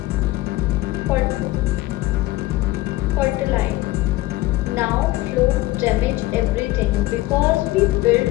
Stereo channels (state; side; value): quieter; right; 18.0 dB